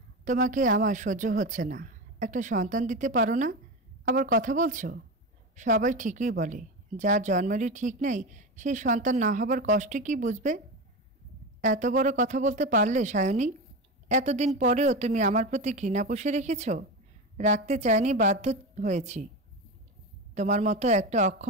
তোমাকে আমার সহ্য হচ্ছে না। একটা সন্তান দিতে পারো না? আবার কথা বলছো? সবাই ঠিকই বলে, যার জন্মেরই ঠিক নেই সেই সন্তান না হবার কষ্ট কি বুঝবে? এত বড় কথা বলতে পারলে সায়নী? এতদিন পরেও তুমি আমার প্রতি ঘৃণা পুষে রেখেছ। রাখতে চাইনি, বাধ্য হয়েছি। তোমার মতো একটা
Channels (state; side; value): normal; both; correlation 0.20